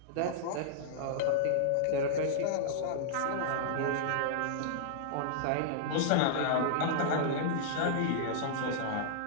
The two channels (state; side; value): different; both; correlation -0.02